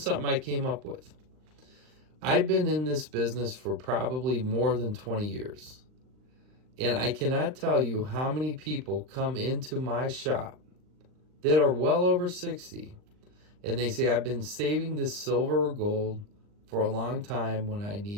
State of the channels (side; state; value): left; late; 39 ms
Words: I came up with. I've been in this business for probably more than 20 years. And I cannot tell you how many people come into my shop that are well over 60, and they say, I've been saving this silver or gold for a long time when I